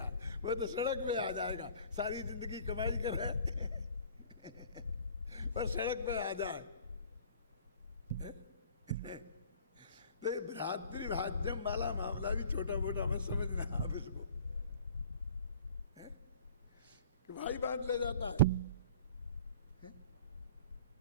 वो तो सड़क पे आ जाएगा, सारी जिंदगी कमाई करे पर सड़क पे आ जाए। तो भ्रातृभाज्यम वाला मामला भी छोटा मोटा मत समझना आप इसको, कि भाई बांट ले जाता है।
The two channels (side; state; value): both; inverted; correlation -0.49